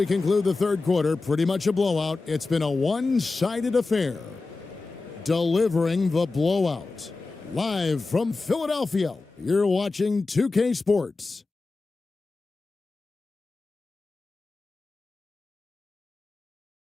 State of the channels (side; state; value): right; quieter; 3.7 dB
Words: conclude the third quarter, pretty much a blowout. It's been a one-sided affair. Delivering the blowout. Live from Philadelphia, you're watching 2K Sports.